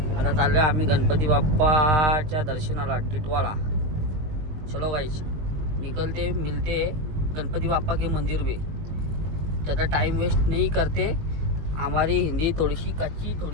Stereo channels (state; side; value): late; left; 20 ms